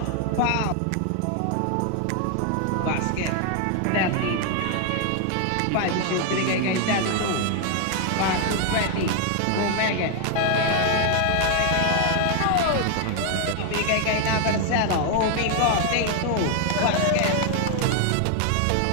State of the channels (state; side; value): different; both; correlation 0.00